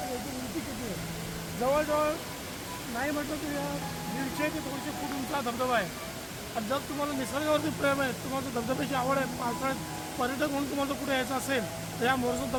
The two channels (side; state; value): both; identical; correlation 1.00